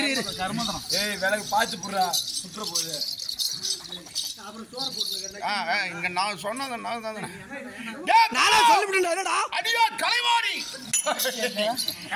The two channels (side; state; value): both; identical; correlation 1.00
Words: விளக்கு பார்த்து போடுறா சுற்ற போகுது. இங்க நான் சொன்னது நானே சொல்லிவிட்டேன். அடியா கலைவாணி